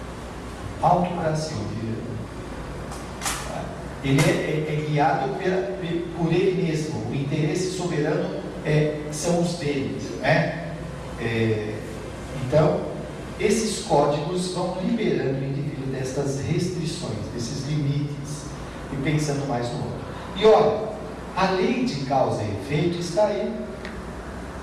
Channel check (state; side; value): identical; both; correlation 1.00